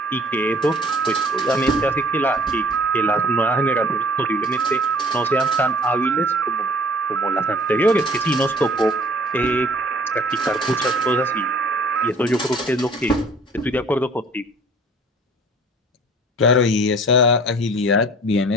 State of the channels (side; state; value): both; normal; correlation 0.52